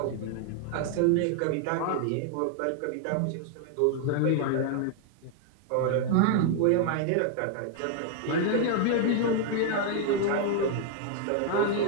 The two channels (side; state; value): both; different; correlation 0.00